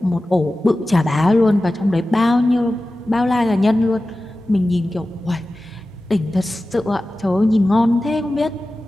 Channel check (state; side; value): normal; both; correlation 0.95